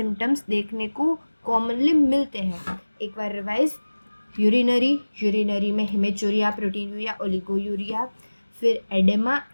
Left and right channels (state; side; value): inverted; both; correlation -1.00